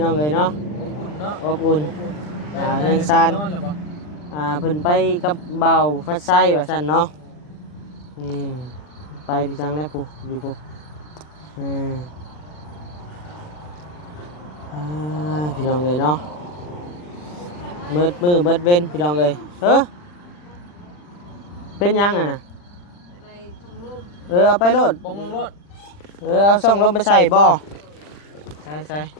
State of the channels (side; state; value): right; late; 40 ms